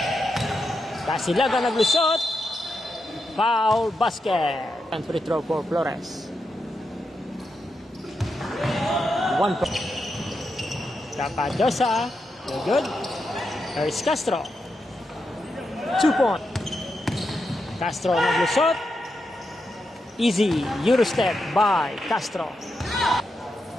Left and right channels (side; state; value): both; normal; correlation 0.85